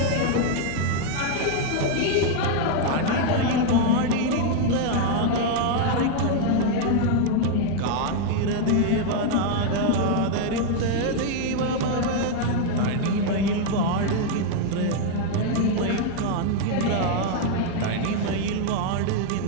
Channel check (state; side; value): different; both; correlation 0.00